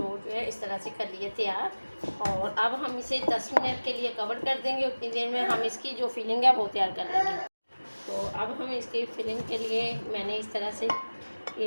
जो है इस तरह से कर ली है तैयार। और अब हम इसे 10 मिनट के लिए कवर कर देंगे। उतनी देर में हम इसकी जो फिलिंग है वो तैयार कर लेंगे। तो अब हम इसकी फिलिंग के लिए मैंने इस तरह से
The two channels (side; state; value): both; inverted; correlation -1.00